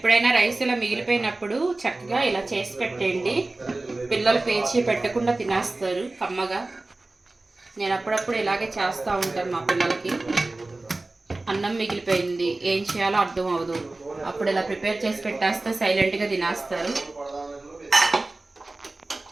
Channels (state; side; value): quieter; left; 3.0 dB